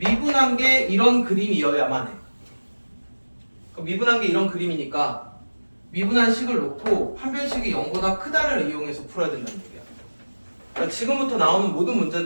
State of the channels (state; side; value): inverted; both; correlation -1.00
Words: 게 이런 그림이어야만 해. 미분한 게 이런 그림이니까 미분한 식을 놓고 판별식이 0보다 크다를 이용해서 풀어야 된다는 얘기야. 그러니까 지금부터 나오는 모든